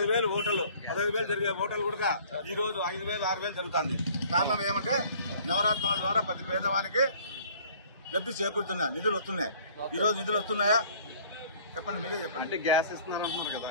జరిగే హోటల్ కూడా ఈ రోజు 5,000, 6,000 జరుగుతుంది. కారణం ఏమంటే నవరత్నాల ద్వారా ప్రతి పేదవానికి లబ్ధి చేకూరుతున్నాయి, నిధులు వస్తున్నాయి. ఈ రోజు నిధులు వస్తున్నాయా చెప్పండి, మీరే చెప్పండి. అంటే గ్యాస్ ఇస్తున్నారు అంటున్నారు కదా,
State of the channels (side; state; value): both; inverted; correlation -0.53